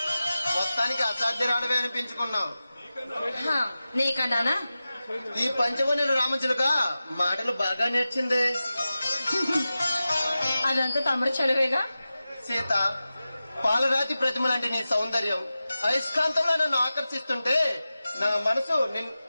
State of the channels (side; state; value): both; inverted; correlation -0.95